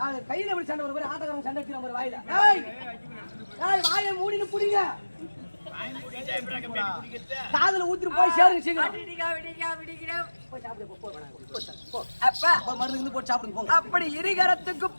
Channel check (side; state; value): both; inverted; correlation -1.00